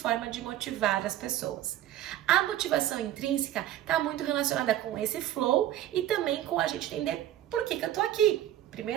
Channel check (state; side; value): quieter; left; 12.6 dB